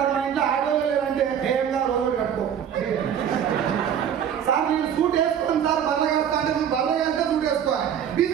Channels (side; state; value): left; quieter; 8.8 dB